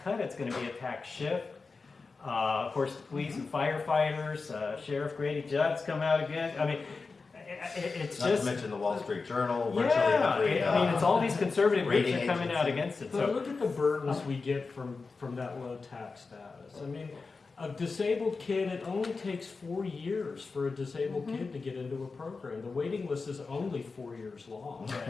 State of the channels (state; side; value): quieter; right; 4.3 dB